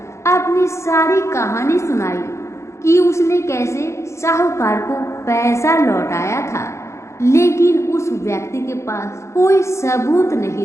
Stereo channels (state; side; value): late; right; 0.14 ms